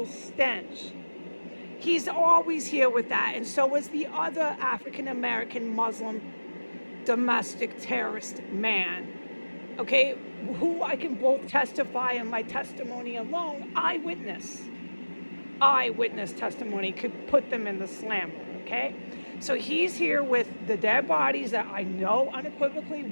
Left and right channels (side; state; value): both; inverted; correlation -1.00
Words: stench. He's always here with that, and so is the other African American Muslim domestic terrorist man. Okay, who I can both testify in my testimony alone, eyewitness testimony could put them in the slammer, okay? So he's here with the dead bodies that I know unequivocally